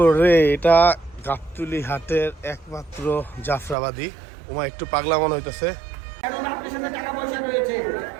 এটা গাবতলী হাটের একমাত্র জাফরাবাদী। ওমা একটু পাগলা মনে হইতেছে। কারণ আপনার সাথে টাকা পয়সা রয়েছে,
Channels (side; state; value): left; drops out; at 3.8 s